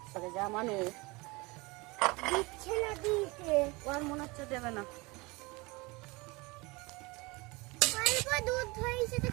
সরে যা মানুষ। দিচ্ছে না দিতে, ওর মনে হচ্ছে দেবে না। অল্প দুধ হয়েছে তো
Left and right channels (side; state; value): left; quieter; 24.8 dB